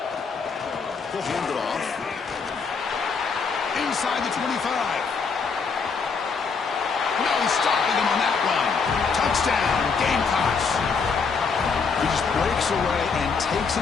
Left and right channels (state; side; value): quieter; right; 5.2 dB